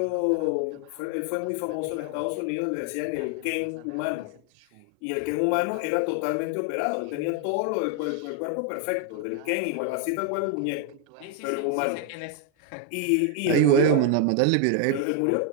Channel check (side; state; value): both; different; correlation 0.01